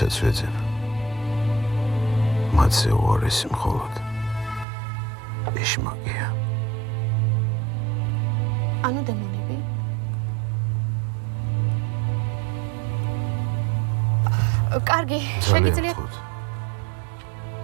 ვეძებ. მათზე უარესი მხოლოდ ეშმაკია. ანუ დემონები? კარგი, შეგიძლიათ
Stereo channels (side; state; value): left; drops out; at 4.7 s